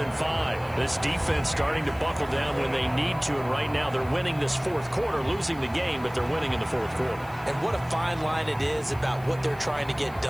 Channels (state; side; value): noise; left; hiss, 24 dB below the sound